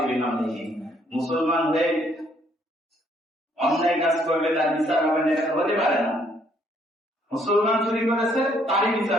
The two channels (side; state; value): both; normal; correlation 0.67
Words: বিহামদিহি। মুসলমান হয়ে অন্যায় কাজ করবে, তার বিচার হবে না, এটা হতে পারে না। মুসলমান চুরি করেছে, তারই